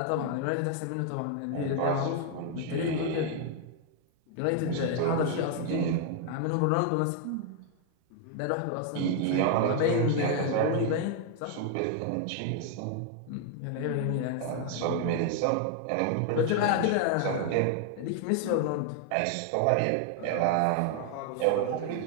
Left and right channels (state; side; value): different; both; correlation 0.00